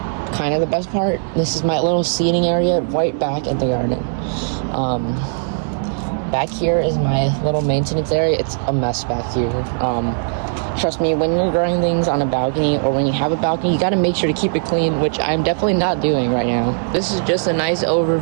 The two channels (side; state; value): left; silent; digital silence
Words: kind of the best part. This is my little seating area right back in the garden. Back here is my little maintenance area. It's a mess back here. Trust me, when you're growing things on a balcony or when you have a balcony, you got to make sure to keep it clean, which I'm definitely not doing right now. This is just a nice